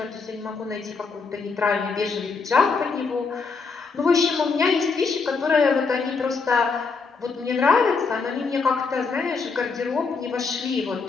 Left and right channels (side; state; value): right; quieter; 4.7 dB